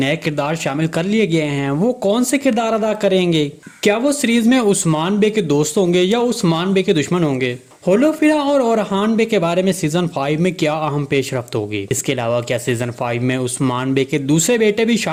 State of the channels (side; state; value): both; identical; correlation 1.00